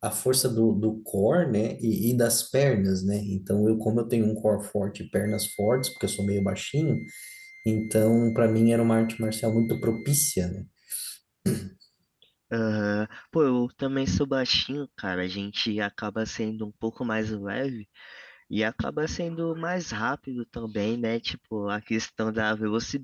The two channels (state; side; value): identical; both; correlation 1.00